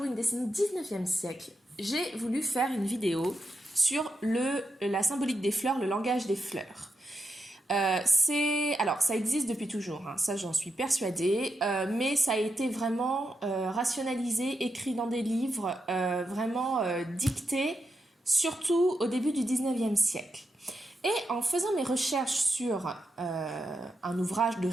une décennie 19e siècle, j'ai voulu faire une vidéo sur la symbolique des fleurs, le langage des fleurs. Alors, ça existe depuis toujours, hein, ça j'en suis persuadée, mais ça a été vraiment rationalisé, écrit dans des livres, vraiment dicté, surtout au début du 19e siècle. Et en faisant mes recherches sur un ouvrage de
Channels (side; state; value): both; normal; correlation 0.86